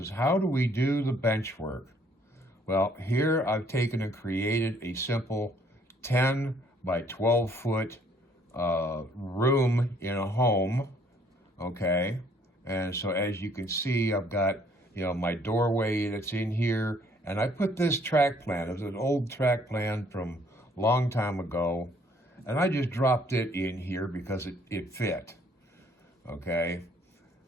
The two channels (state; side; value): normal; both; correlation 0.62